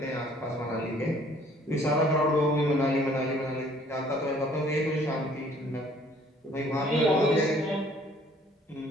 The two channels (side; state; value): both; normal; correlation 0.58